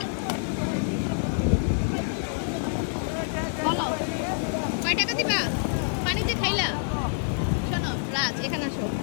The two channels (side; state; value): right; silent; 59 dB below the other